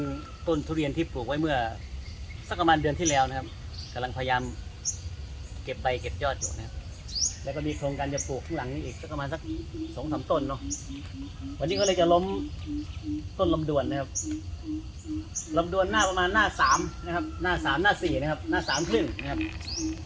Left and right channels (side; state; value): both; identical; correlation 1.00